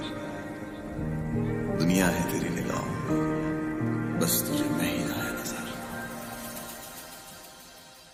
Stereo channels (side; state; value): both; identical; correlation 1.00